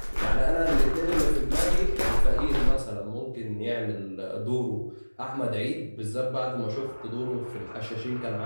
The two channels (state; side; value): inverted; both; correlation -1.00